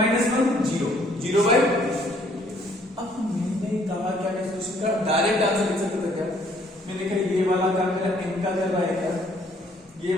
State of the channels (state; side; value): normal; both; correlation 0.63